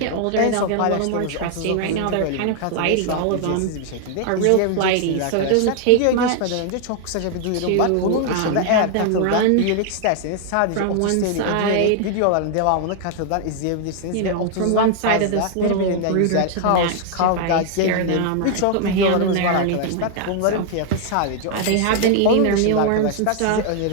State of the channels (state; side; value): different; both; correlation 0.00